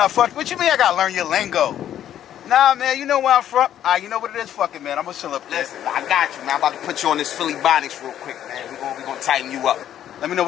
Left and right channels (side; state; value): right; quieter; 10.9 dB